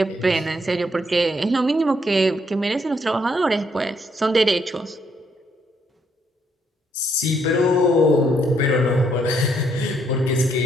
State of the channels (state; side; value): normal; both; correlation 0.72